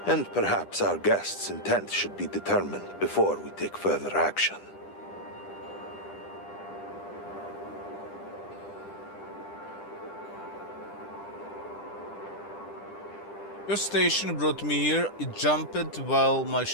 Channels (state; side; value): late; right; 10 ms